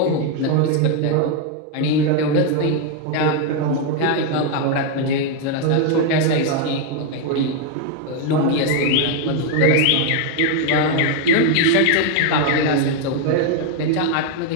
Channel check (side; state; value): both; different; correlation 0.01